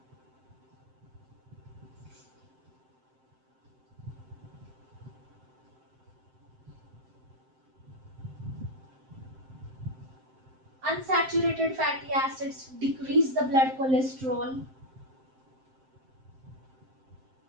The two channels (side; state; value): left; late; 7.7 ms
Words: Unsaturated fatty acids decrease the blood cholesterol.